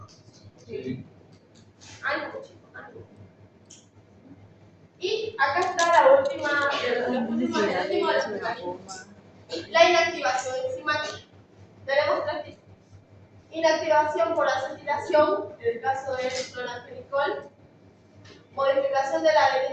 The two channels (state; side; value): identical; both; correlation 1.00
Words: Sí. Ánimo, chicos, ánimo. Y acá está la última, el último de los mecanismos. La inactivación enzimática. Tenemos tres tipos. Inactivación por acetilación, en el caso del clorantienicol. Modificación de la